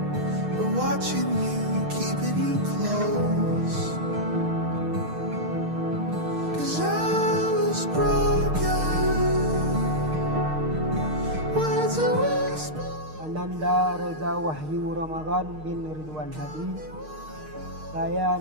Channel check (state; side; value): late; left; 6.5 ms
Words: are watching you, keeping you close. 'Cause I was broken, words are whispered. Ananda Reza Wahyu Ramadan bin Ridwan Hadi. Saya